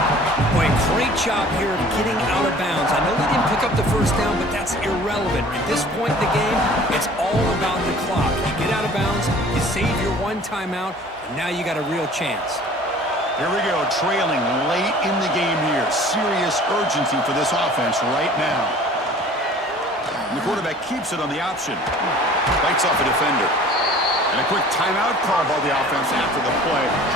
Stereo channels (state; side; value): normal; both; correlation 0.48